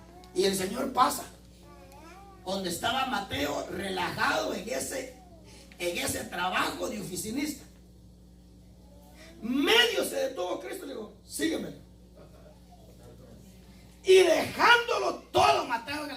Y el Señor pasa donde estaba Mateo relajado en ese trabajo de oficinista. Medio se detuvo Cristo y le dijo, sígueme. Y dejándolo todo, Mateo en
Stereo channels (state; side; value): identical; both; correlation 1.00